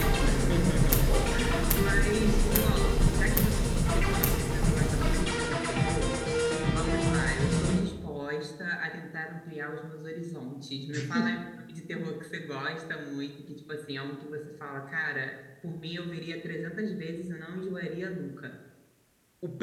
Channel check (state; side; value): identical; both; correlation 1.00